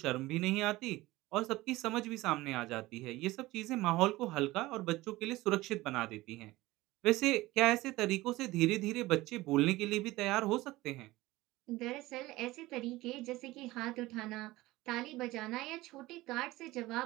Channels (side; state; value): left; quieter; 18.8 dB